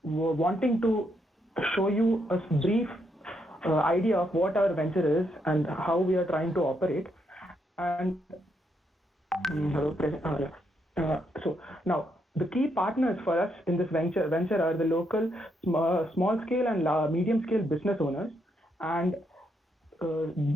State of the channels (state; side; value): normal; both; correlation 0.77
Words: wanting to show you a brief idea of what our venture is and how we are trying to operate. And so now the key partners for us in this venture are the local small scale and medium scale business owners, and